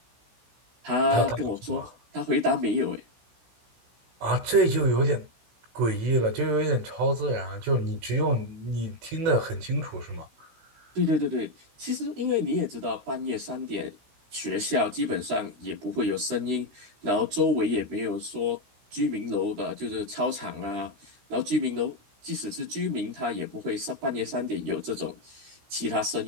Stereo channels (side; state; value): left; late; 16 ms